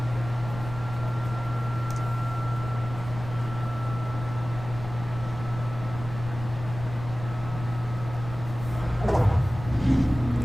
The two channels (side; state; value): left; noise; rumble, 11 dB below the sound